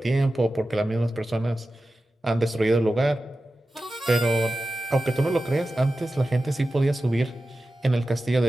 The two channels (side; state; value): both; normal; correlation 0.94